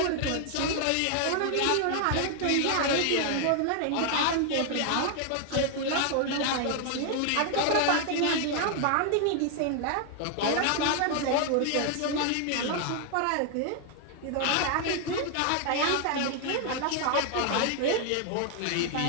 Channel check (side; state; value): both; different; correlation 0.00